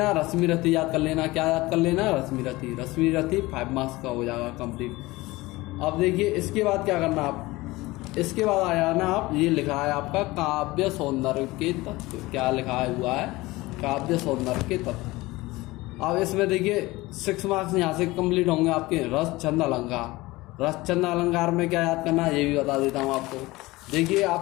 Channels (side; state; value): right; quieter; 20.4 dB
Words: रश्मि रथी याद कर लेना। क्या याद कर लेना, रश्मि रथी 5 मार्क्स का हो जाएगा कंप्लीट। अब देखिए इसके बाद क्या करना आप, इसके बाद आ जाना आप, ये लिखा है आपका काव्य सौंदर्य के तत्व। क्या लिखा हुआ है, काव्य सौंदर्य के तत्व। अब इसमें देखिए 6 मार्क्स यहाँ से कंप्लीट होंगे आपके। रस छंद अलंकार, रस छंद अलंकार में क्या याद करना है ये भी बता देता हूँ आपको। देखिए